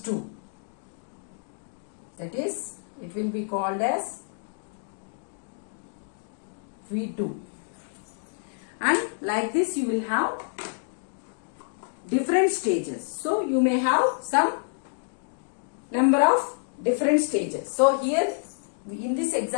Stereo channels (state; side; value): silent; right; digital silence